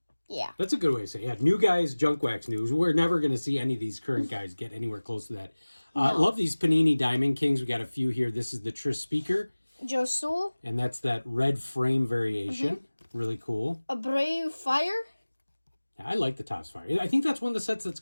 Yeah. That's a good way to say it. Yeah, new guys, Junk Wax news. We're never going to see any of these current guys get anywhere close to that. No. Love these Panini Diamond Kings. We got a few here. This is the Tris Speaker. Joe Sewell. And that's that red frame variation. Really cool. A Brave Fire. I like the Topps Fire. I think that's one of the sets that's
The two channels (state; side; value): inverted; both; correlation -1.00